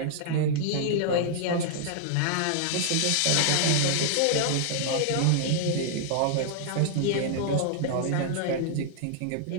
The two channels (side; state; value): both; different; correlation -0.01